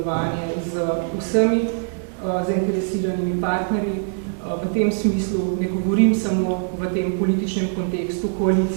z vsemi zainteresiranimi partnerji. V tem smislu ne govorim samo v tem političnem kontekstu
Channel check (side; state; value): left; silent; digital silence